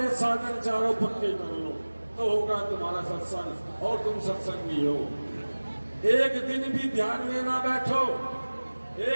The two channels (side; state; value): both; inverted; correlation -1.00